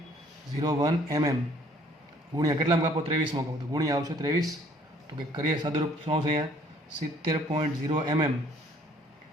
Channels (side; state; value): both; normal; correlation 0.59